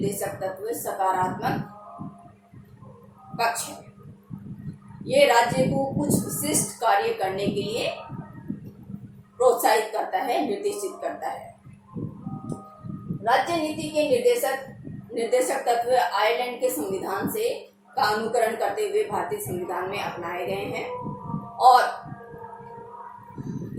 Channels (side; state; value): both; identical; correlation 1.00